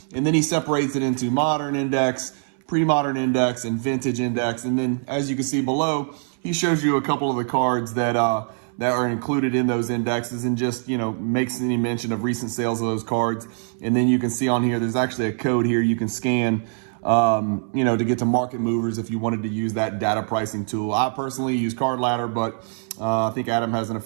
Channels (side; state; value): left; silent; 61 dB below the other